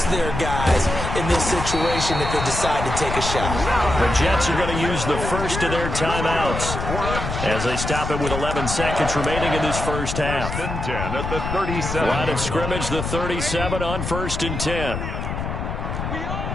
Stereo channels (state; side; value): noise; left; rumble, 4 dB below the sound